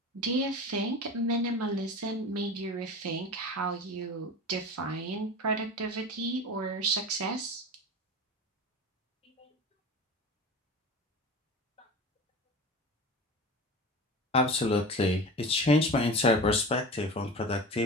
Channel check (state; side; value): normal; both; correlation 0.32